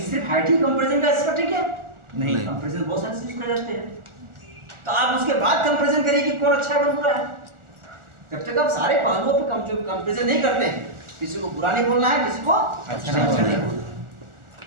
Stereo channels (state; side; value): late; left; 1.4 ms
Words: सिर्फ हाइट ही कंपैरिजन का एस्पेक्ट है क्या? नहीं। कंपैरिजन बहुत सारे चीज कर जाते हैं। तो आप उसके बाद कंपैरिजन करिए कि कौन अच्छा है कौन बुरा है। जब तक आप सारे पहलुओं पे कंपैरिजन नहीं करते हैं, किसी को बुरा नहीं बोलना है, किसी को अच्छा नहीं बोलना।